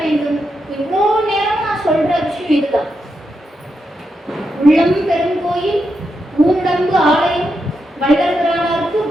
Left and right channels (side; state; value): both; normal; correlation 0.84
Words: வேண்டும்? இவ்வளோ நேரம் நான் சொல்ற விஷயம் இதுதான். உள்ளம் பெருங்கோயில், ஊண்டம்பு ஆலயம், வள்ளல்பிரானாருக்கு